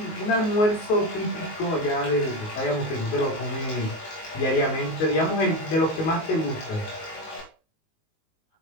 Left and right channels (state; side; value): late; right; 19 ms